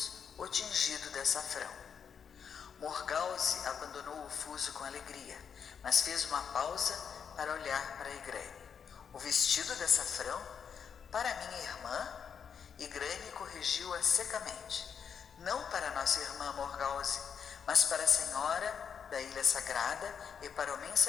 o tingido de açafrão. Morgause abandonou o fuso com alegria, mas fez uma pausa para olhar para Igraine. O vestido de açafrão? Para minha irmã? Igraine corrigiu-a secamente. Não para nossa irmã Morgause, mas para a senhora da Ilha Sagrada e para o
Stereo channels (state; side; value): quieter; right; 7.1 dB